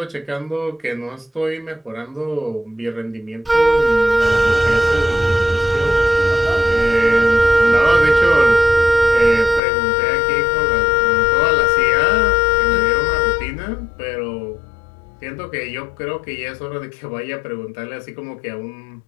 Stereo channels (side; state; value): right; drops out; at 9.6 s